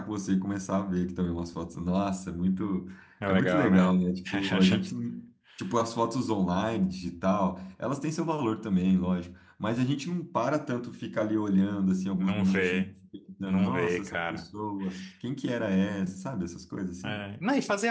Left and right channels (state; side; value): identical; both; correlation 1.00